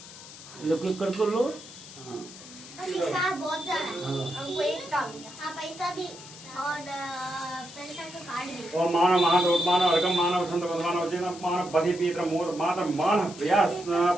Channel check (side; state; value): left; noise; hiss, 16 dB below the sound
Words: लोग कर लो। हाँ पैसा बहुत ज्यादा है। हाँ। हमको एक काम हाँ पैसा भी और पैसा का कार्ड भी। ओम मानव महादोत्मान अर्घम मानव संत भगवान वचन मानव बधि पीत्र मोर मातर मान प्रयास